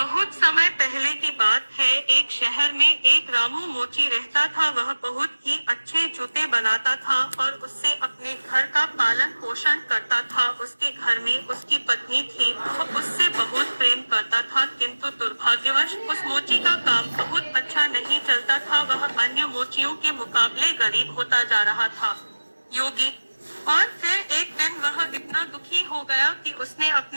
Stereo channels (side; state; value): both; inverted; correlation -1.00